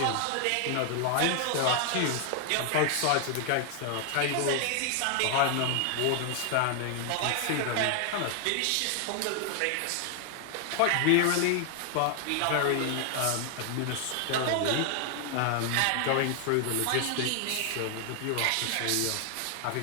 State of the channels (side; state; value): both; different; correlation 0.00